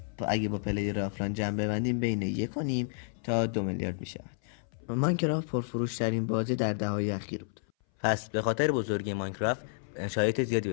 اگه با پلیر آفلاین جمع ببندیم بین 1.5 تا 2 میلیارد میشه. ماینکرافت پرفروش ترین بازی در دهه‌های اخیر بود. پس به خاطر بزرگی ماینکرافت شرایط زیادی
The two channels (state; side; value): silent; right; 57 dB below the other